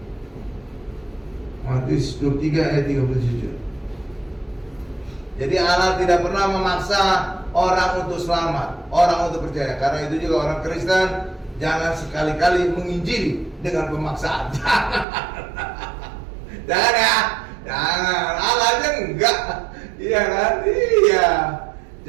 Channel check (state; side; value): drops out; left; at 15.1 s